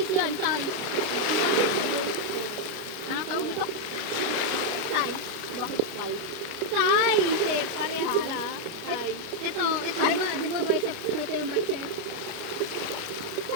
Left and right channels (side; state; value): left; late; 29 ms